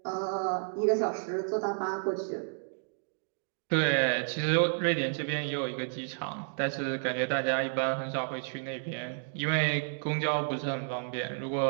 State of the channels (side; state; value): left; silent; digital silence